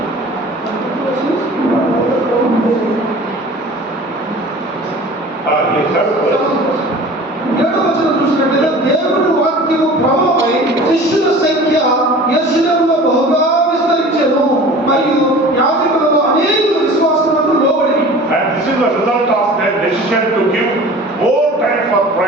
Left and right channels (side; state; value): both; normal; correlation 0.42